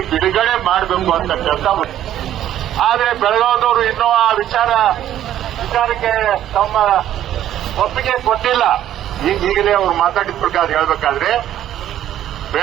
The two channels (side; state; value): left; quieter; 11.8 dB